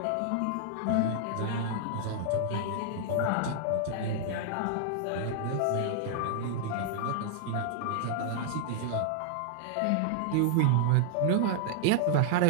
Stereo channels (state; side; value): different; both; correlation -0.01